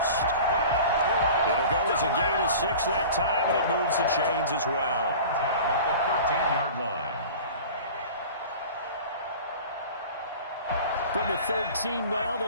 It'll go as a gain of 6 that time, and it moves the chains as well. At the 13-yard line. From the 13 now,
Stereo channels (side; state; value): both; inverted; correlation -0.39